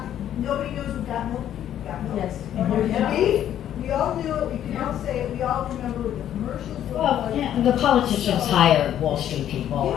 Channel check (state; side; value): quieter; right; 10.9 dB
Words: nobody knows what got milk? Got milk. Yes. And there's the beef. We all knew it, we can all say it, we all remember what the commercials were Well, like. yeah, the politicians hire Wall Street people,